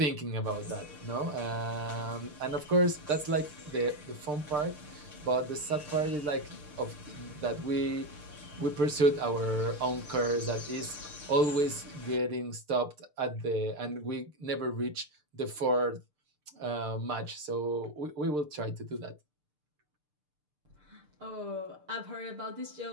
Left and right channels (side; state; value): left; late; 6.7 ms